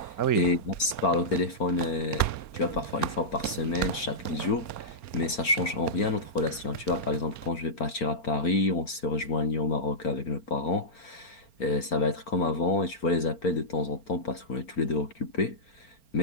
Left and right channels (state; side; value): late; right; 4.4 ms